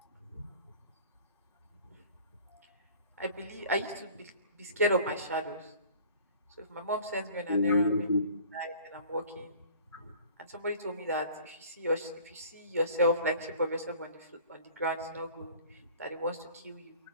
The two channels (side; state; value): both; inverted; correlation -0.47